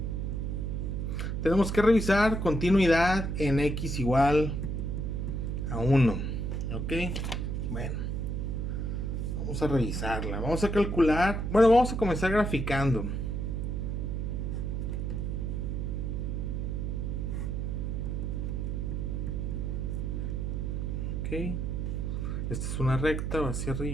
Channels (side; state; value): right; noise; hum, 1 dB below the sound